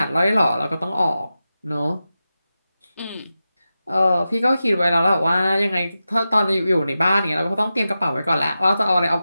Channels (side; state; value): both; inverted; correlation -0.92